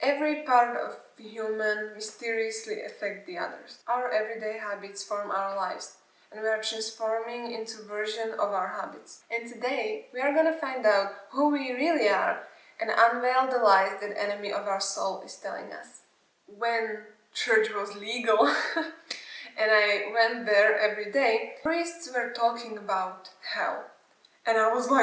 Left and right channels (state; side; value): identical; both; correlation 1.00